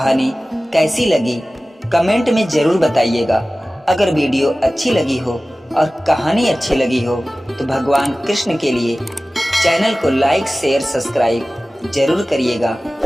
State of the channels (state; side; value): normal; both; correlation 0.97